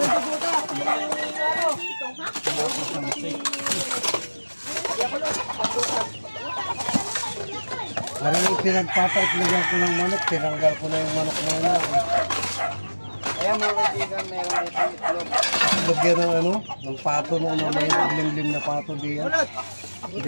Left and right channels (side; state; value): both; inverted; correlation -1.00